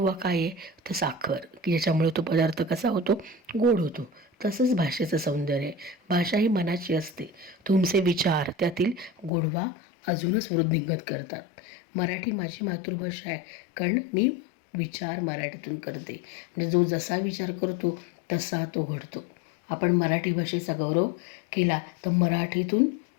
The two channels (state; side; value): drops out; right; at 9.3 s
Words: काय आहे तर साखर, की ज्याच्यामुळे तो पदार्थ कसा होतो, गोड होतो. तसंच भाषेचं सौंदर्य आहे. भाषा ही मनाची असते. तुमचे विचार त्यातील गोडवा अजूनच वृद्धिंगत करतात. मराठी माझी मातृभाषा आहे, कारण मी विचार मराठीतून करते. म्हणजे जो जसा विचार करतो तसा तो घडतो. आपण मराठी भाषेचा गौरव केला तर मराठीतून